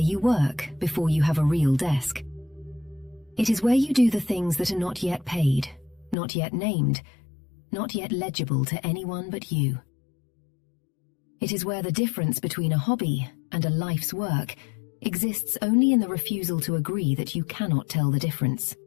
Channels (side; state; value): right; drops out; at 6.2 s